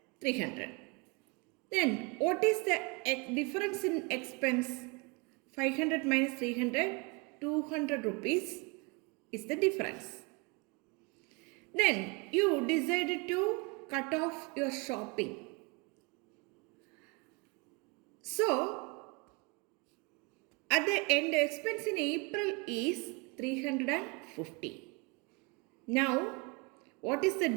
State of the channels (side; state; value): left; quieter; 28.8 dB